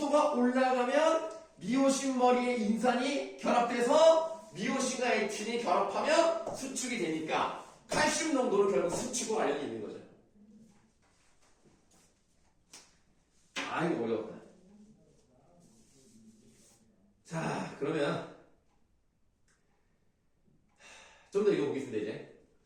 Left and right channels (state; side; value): identical; both; correlation 1.00